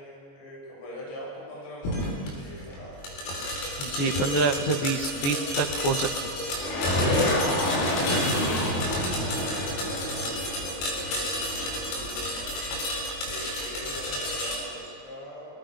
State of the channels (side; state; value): right; late; 22 ms